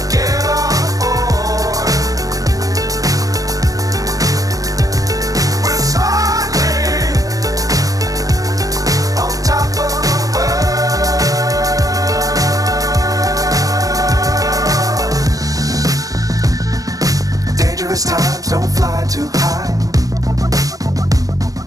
Times don't fly too high.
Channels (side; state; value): left; late; 0.17 ms